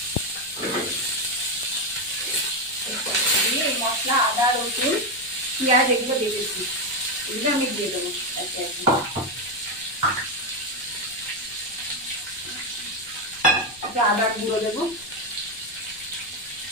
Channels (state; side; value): noise; left; rumble, 24 dB below the sound